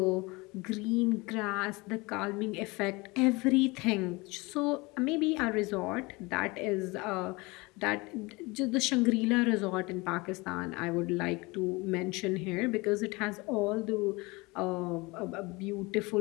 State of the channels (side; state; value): right; quieter; 24.7 dB